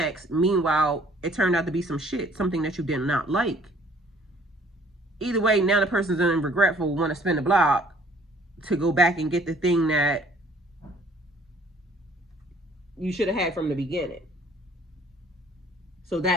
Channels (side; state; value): both; normal; correlation 0.57